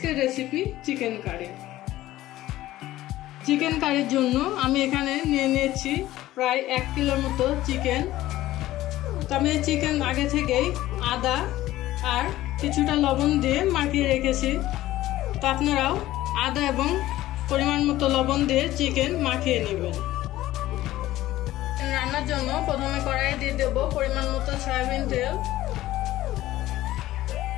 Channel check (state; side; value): quieter; right; 15.4 dB